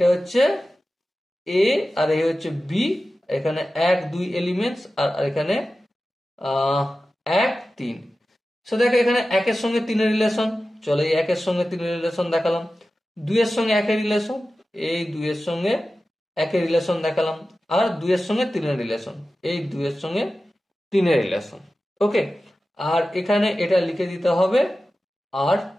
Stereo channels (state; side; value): normal; both; correlation 0.94